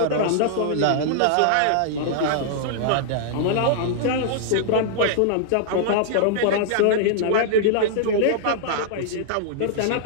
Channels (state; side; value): different; both; correlation -0.01